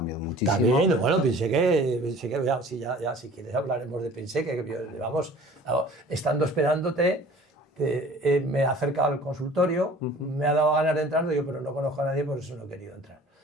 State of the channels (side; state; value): both; normal; correlation 0.47